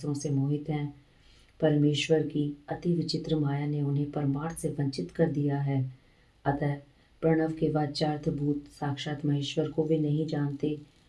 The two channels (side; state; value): both; identical; correlation 1.00